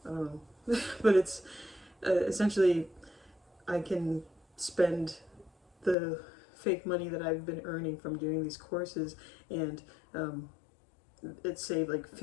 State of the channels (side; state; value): right; drops out; at 6.0 s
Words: I don't know, but it's essentially I can spend the fake money that I've been earning from doing these courses, and it saved like